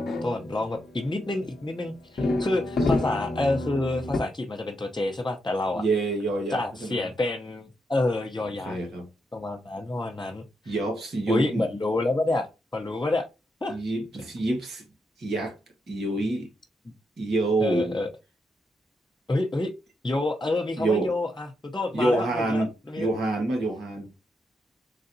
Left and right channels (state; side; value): normal; both; correlation 0.82